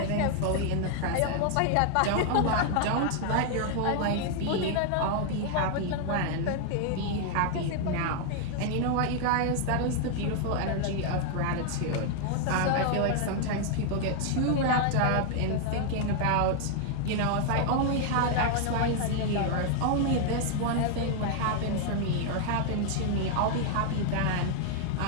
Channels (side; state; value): both; different; correlation 0.00